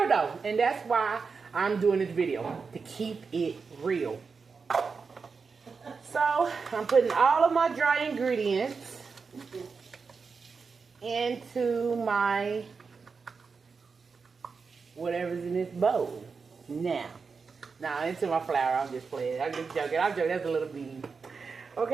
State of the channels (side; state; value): left; quieter; 5.1 dB